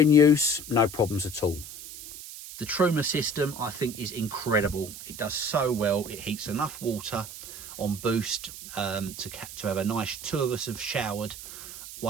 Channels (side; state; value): right; noise; hiss, 12 dB below the sound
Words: use, no problems at all. The Truma system, I think, is incredible. It does so well. It heats enough water on boost to have a nice 2 of us have showered